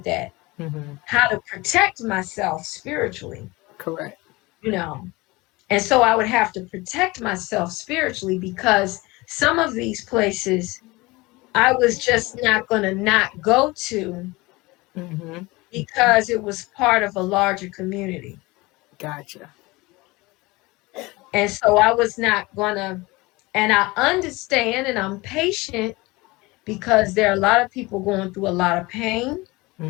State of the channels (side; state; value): right; quieter; 22.6 dB